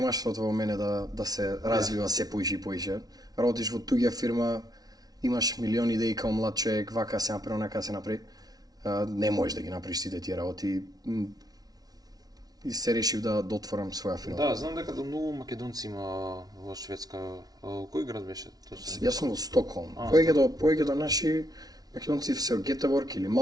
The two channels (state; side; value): late; left; 0.19 ms